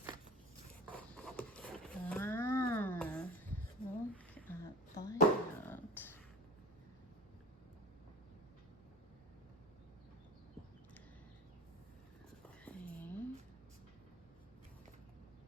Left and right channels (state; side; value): normal; both; correlation 0.35